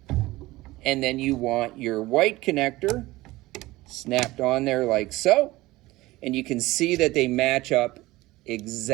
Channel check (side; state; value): left; quieter; 18.9 dB